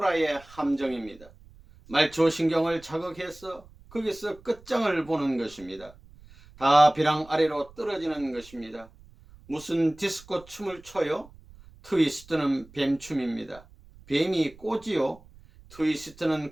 함정입니다. 말초신경을 자극해서 거기서 끝장을 보는 것입니다. 다 벼랑 아래로 떨어지는 것입니다. 무슨 디스코 춤을 춰요? 트위스트는 뱀춤입니다. 뱀이 꼬지요?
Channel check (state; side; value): noise; right; rumble, 23 dB below the sound